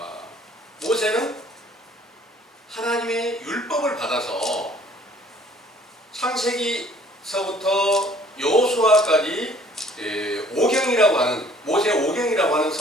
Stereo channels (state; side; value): normal; both; correlation 0.56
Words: 모세는 하나님의 율법을 받아서 창세기서부터 여호수아까지 오경이라고 하는, 모세 오경이라고 하는